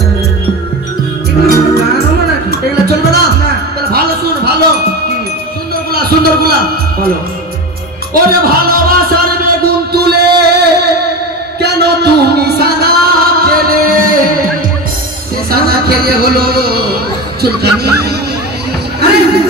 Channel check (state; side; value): normal; both; correlation 0.25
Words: এগুলো কোনো গান হলো নাকি? এগুলো চলবে না? না। তাহলে ভালো শুন, ভালো কি? সুন্দর গুলা। বলো। ওরে ভালোবাসার বেগুন তুলে কেন তুমি সাদা খেলে? সে সাদা খেলে হলো চুলকানি। আরে